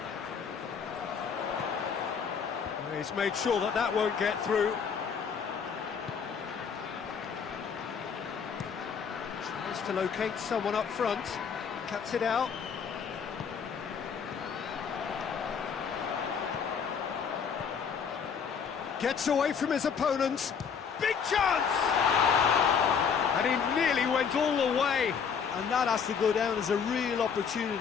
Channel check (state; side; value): quieter; right; 6.6 dB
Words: He's made sure that that won't get through. Tries to locate someone up front, cuts it out. Gets away from his opponents. Big chance! And he nearly went all the way. And that has to go down as a real